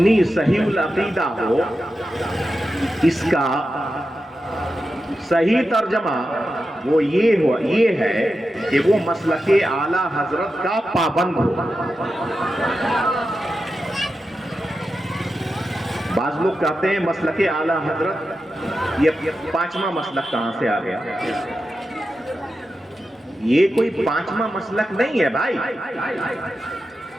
صحیح العقیدہ ہو. اس کا صحیح ترجمہ وہ یہ ہے کہ وہ مسلک اعلی حضرت کا پابند ہو. بعض لوگ کہتے ہیں مسلک اعلی حضرت، یہ 5واں مسلک کہاں سے آ گیا؟ یہ کوئی 5واں مسلک نہیں ہے بھائی.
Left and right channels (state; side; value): normal; both; correlation 0.90